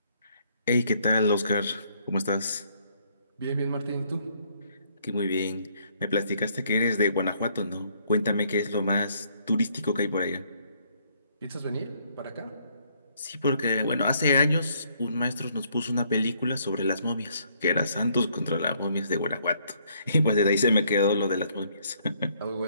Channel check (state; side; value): inverted; both; correlation -0.68